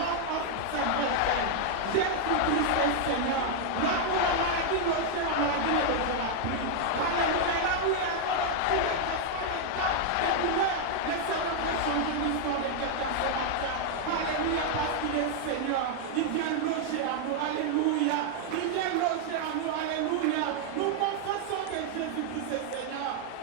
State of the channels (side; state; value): both; different; correlation 0.00